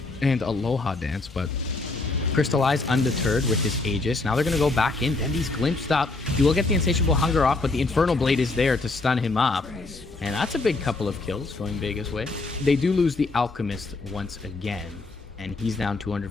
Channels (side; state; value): right; quieter; 3.4 dB